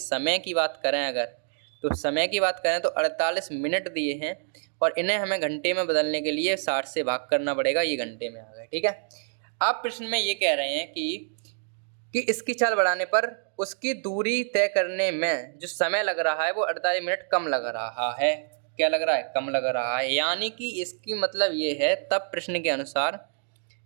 की बात करें अगर, तो समय की बात करें तो 48 मिनट दिए हैं और इन्हें हमें घंटे में बदलने के लिए 60 से भाग करना पड़ेगा, ये घंटे में आ गए। ठीक है, आप प्रश्न में ये कह रहे हैं कि इसकी चाल बढ़ाने पर उसकी दूरी तय करने में जो समय लग रहा है वो 48 मिनट कम लग रहा है। क्या लग रहा है, कम लग रहा है। यानी कि इसकी मतलब ये है, तब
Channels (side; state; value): left; silent; digital silence